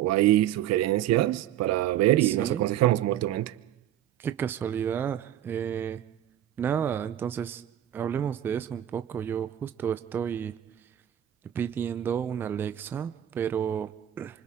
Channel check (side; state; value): left; quieter; 11.7 dB